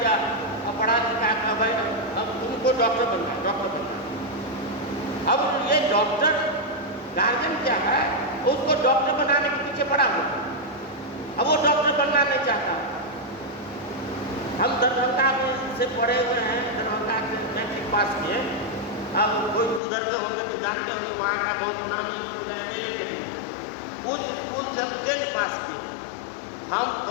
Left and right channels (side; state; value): right; drops out; at 19.8 s